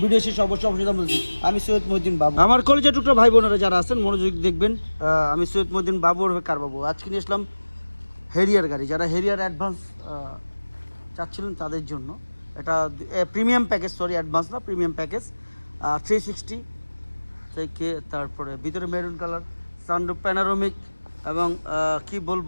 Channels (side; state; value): both; inverted; correlation -1.00